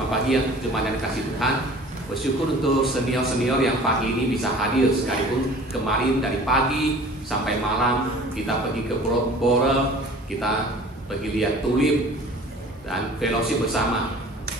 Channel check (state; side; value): normal; both; correlation 0.46